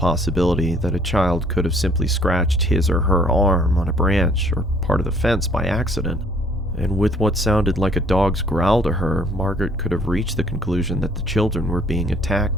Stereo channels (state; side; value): normal; both; correlation 0.59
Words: that a child could have simply scratched his or her arm on a branch or part of the fence by accident. And with what sounded like a dog's growl to her, Margaret could have reached the conclusion that the children were being